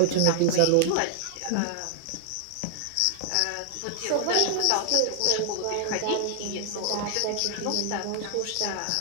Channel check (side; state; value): both; different; correlation 0.00